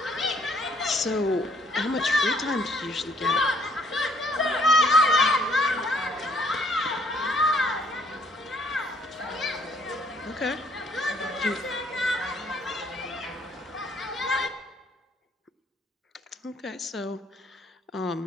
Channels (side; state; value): both; normal; correlation 0.64